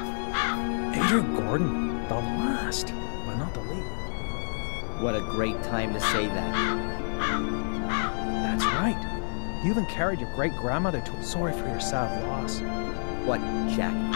Adrian Gordon, the last, but not the least. What a great time to say that. That's right. You even carried your great-grandmother to... Sorry for your sad loss. What, Jack?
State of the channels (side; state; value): right; silent; 59 dB below the other